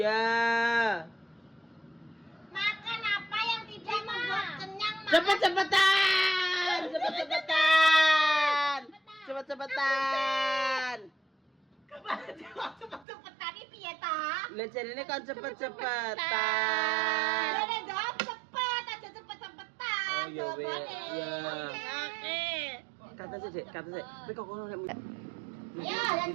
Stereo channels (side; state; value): left; drops out; at 13.1 s